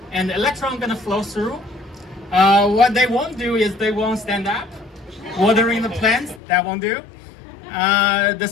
and the electron gonna flow through. What they won't do is they won't stand up. Watering the plants, that won't do. The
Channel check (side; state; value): right; drops out; at 6.4 s